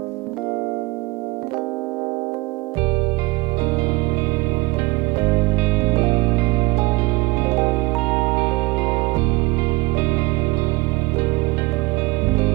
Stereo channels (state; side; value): quieter; left; 23.4 dB